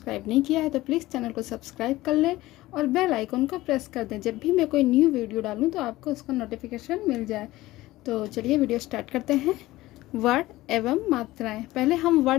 नहीं किया है तो प्लीज़ चैनल को सब्सक्राइब कर लें और बेल आइकन को प्रेस कर दें। जब भी मैं कोई न्यू वीडियो डालूँ तो आपको उसका नोटिफिकेशन मिल जाए। तो चलिए वीडियो स्टार्ट करते हैं। वर्ण एवं मात्राएँ। पहले हम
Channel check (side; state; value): right; quieter; 17.6 dB